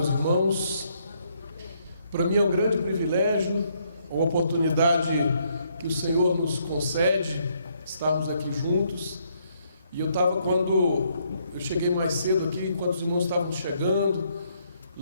irmãos. Para mim é um grande privilégio, uma oportunidade que o Senhor nos concede, estarmos aqui juntos. E eu estava, quando eu cheguei mais cedo aqui, enquanto os irmãos estavam chegando,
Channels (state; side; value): inverted; both; correlation -0.72